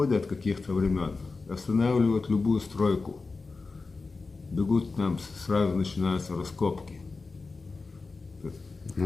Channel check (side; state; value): right; quieter; 4.0 dB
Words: каких-то времен, останавливают любую стройку. Бегут к нам, сразу начинаются раскопки.